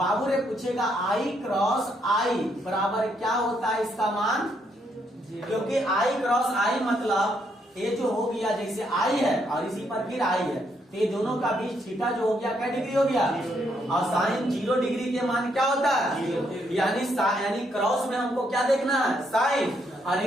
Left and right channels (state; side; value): normal; both; correlation 0.74